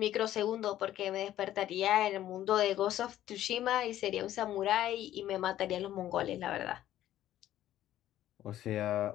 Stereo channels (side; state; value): right; quieter; 12.9 dB